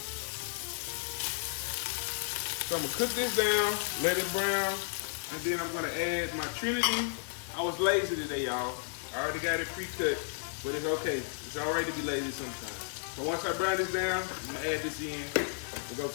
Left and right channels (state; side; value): silent; right; digital silence